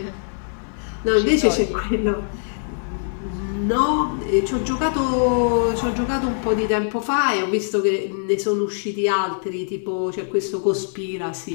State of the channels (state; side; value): silent; right; 59 dB below the other